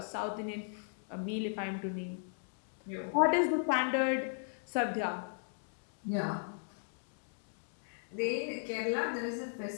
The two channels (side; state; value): right; silent; digital silence